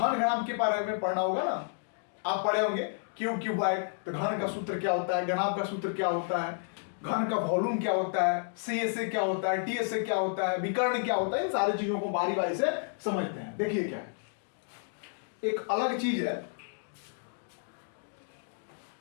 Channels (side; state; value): right; silent; digital silence